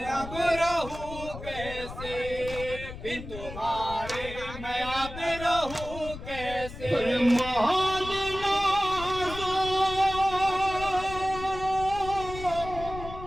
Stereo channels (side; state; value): left; noise; rumble, 11 dB below the sound